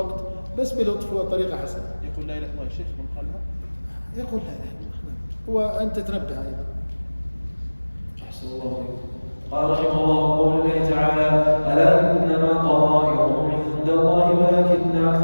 بس بلطف وطريقة حسنة. يقول لا إله إلا الله الشيخ من قالها؟ يقول لا إله إلا الله، وأنت تنبه أيضا. أحسن الله عليكم. قال رحمه الله: قول الله تعالى: ألا إنما طائرهم عند الله ولكن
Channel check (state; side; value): inverted; both; correlation -1.00